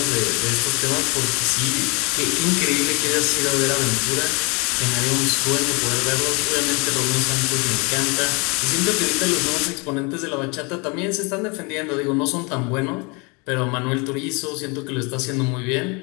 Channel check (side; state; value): right; quieter; 29.9 dB